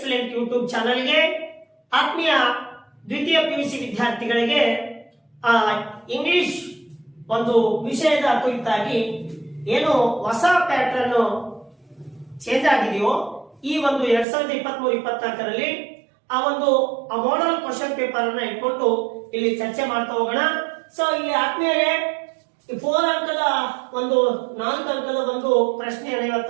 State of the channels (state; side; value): drops out; left; at 14.2 s